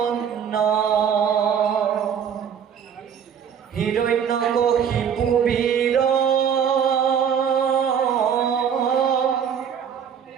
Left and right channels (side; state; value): left; quieter; 7.8 dB